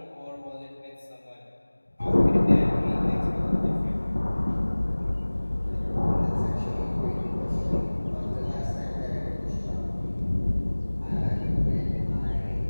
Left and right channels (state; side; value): inverted; both; correlation -1.00